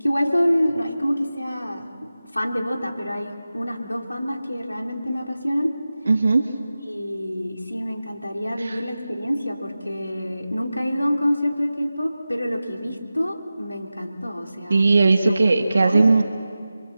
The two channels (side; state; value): both; inverted; correlation -0.95